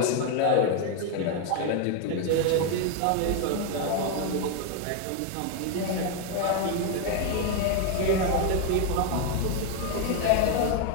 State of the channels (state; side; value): different; both; correlation 0.01